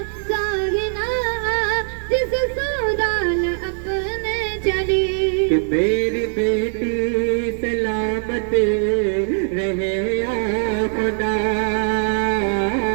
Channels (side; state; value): left; silent; 61 dB below the other